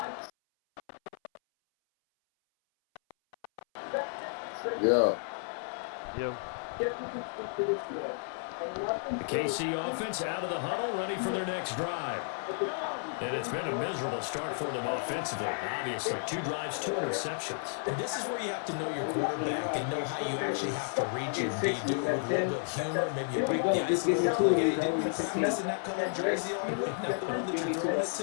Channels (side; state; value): right; silent; 56 dB below the other